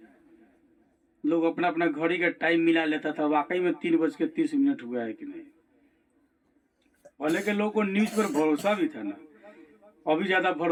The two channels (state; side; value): identical; both; correlation 1.00